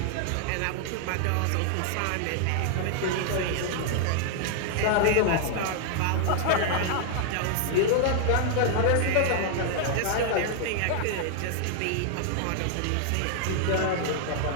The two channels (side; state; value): both; different; correlation -0.01